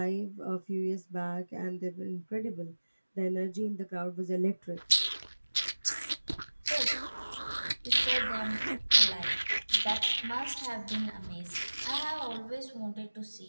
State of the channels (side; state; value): both; inverted; correlation -1.00